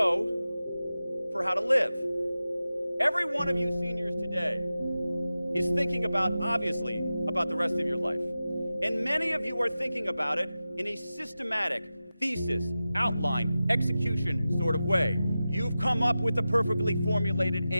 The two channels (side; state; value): both; inverted; correlation -0.94